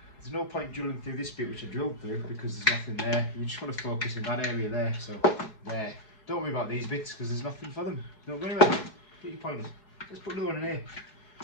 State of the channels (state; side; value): late; right; 4.7 ms